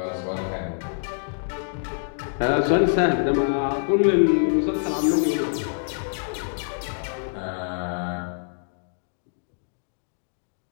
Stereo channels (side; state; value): right; silent; digital silence